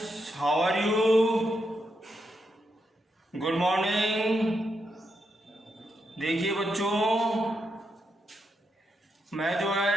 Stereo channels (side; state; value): both; normal; correlation 0.83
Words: how are you? Good morning. देखिए बच्चों, मैं जो